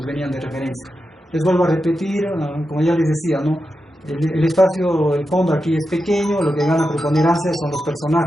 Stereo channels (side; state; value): both; normal; correlation 0.89